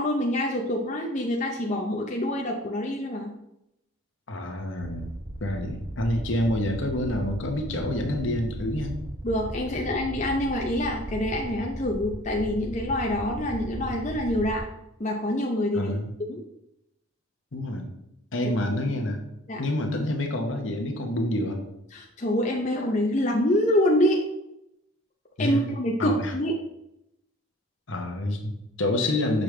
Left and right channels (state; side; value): normal; both; correlation 0.51